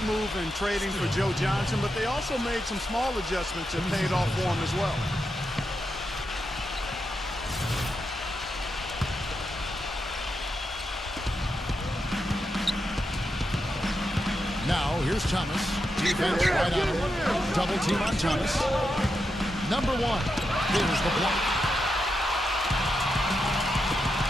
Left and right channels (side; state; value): both; normal; correlation 0.86